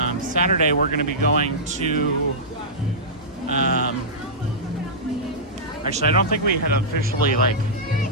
Saturday we're going to be going to... actually, I don't think we had officially like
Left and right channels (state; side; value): normal; both; correlation -0.14